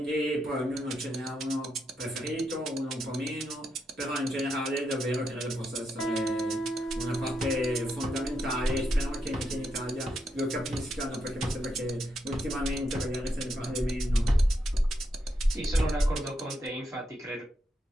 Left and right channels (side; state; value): both; normal; correlation 0.82